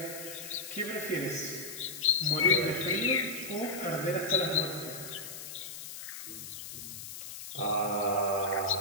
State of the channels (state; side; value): noise; left; hiss, 10 dB below the sound